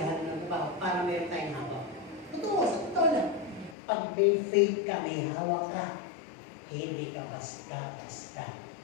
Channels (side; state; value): right; drops out; at 3.8 s